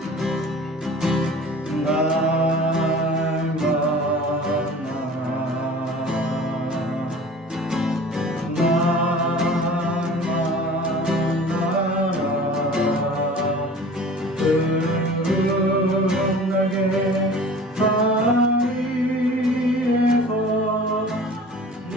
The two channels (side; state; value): both; normal; correlation 0.43